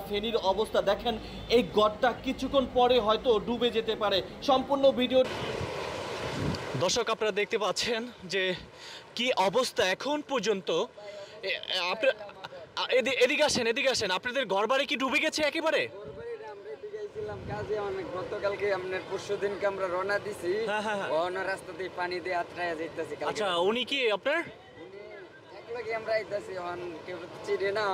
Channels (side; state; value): both; identical; correlation 1.00